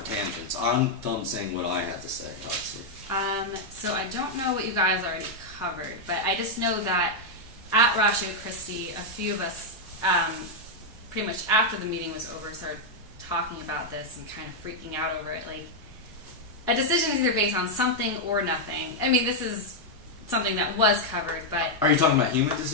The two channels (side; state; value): both; normal; correlation -0.02